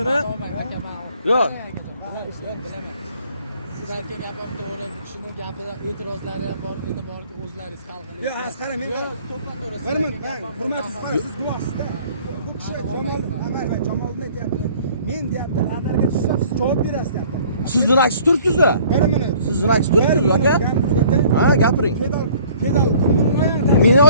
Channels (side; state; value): both; inverted; correlation -0.54